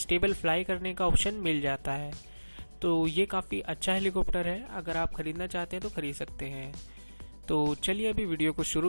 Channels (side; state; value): both; inverted; correlation -1.00